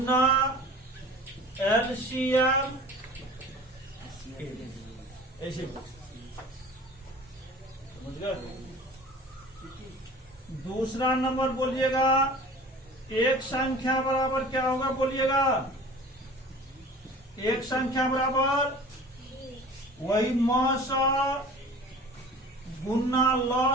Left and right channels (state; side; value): normal; both; correlation 0.42